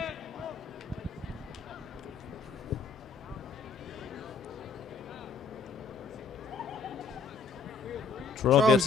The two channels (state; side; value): quieter; right; 4.4 dB